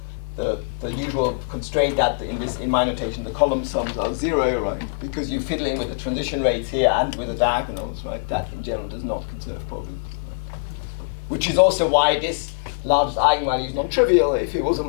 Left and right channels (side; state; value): right; silent; 59 dB below the other